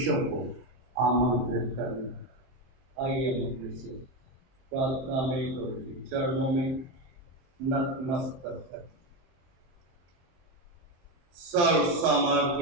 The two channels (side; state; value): left; late; 23 ms